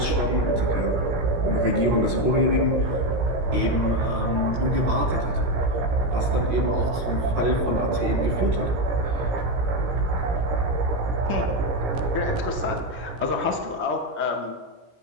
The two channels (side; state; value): left; late; 17 ms